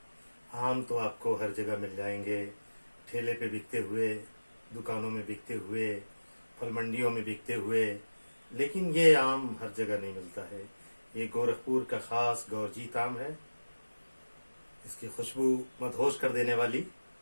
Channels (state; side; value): inverted; both; correlation -1.00